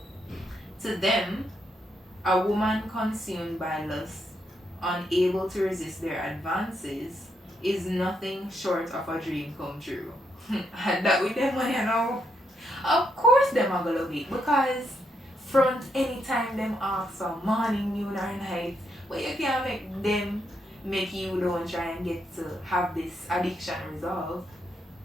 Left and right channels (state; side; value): normal; both; correlation 0.79